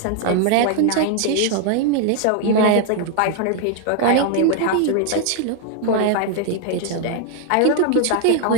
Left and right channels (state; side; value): different; both; correlation 0.00